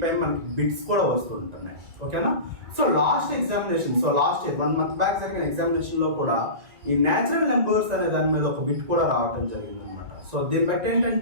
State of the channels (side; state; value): left; late; 1.9 ms